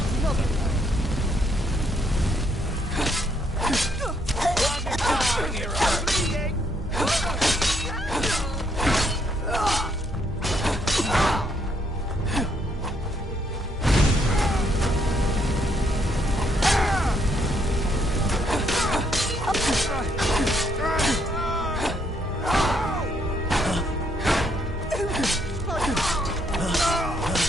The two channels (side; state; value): both; normal; correlation 0.72